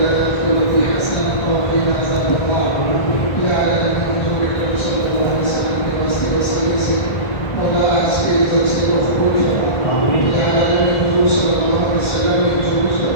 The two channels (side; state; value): right; late; 1.6 ms